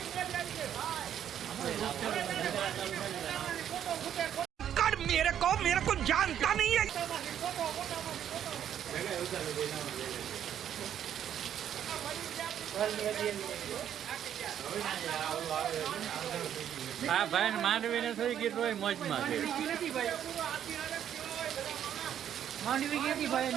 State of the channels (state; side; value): quieter; left; 9.9 dB